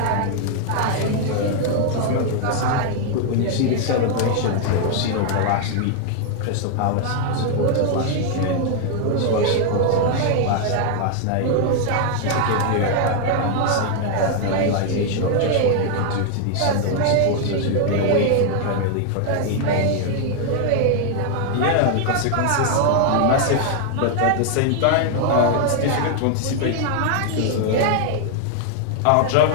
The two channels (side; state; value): both; different; correlation 0.00